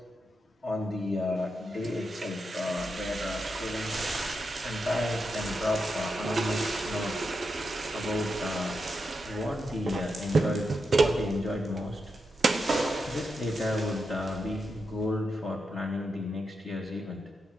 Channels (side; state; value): both; normal; correlation 0.86